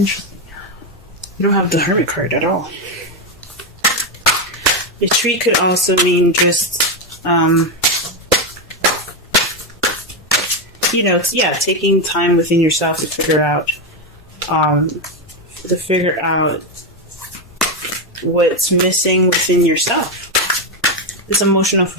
You don't have the Hermit card at all. Retreat could also mean just, taking time within yourself to figure out what's missing within yourself. This emotional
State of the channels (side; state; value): both; normal; correlation 0.08